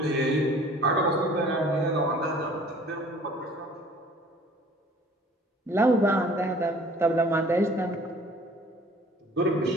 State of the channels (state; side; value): normal; both; correlation 0.51